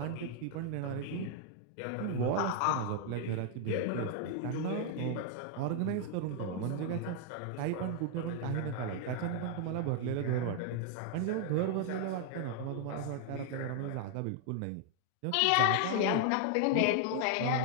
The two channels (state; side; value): different; both; correlation 0.00